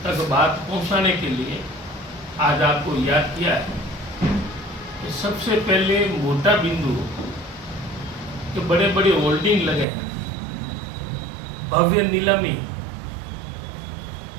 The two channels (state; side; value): drops out; left; at 9.9 s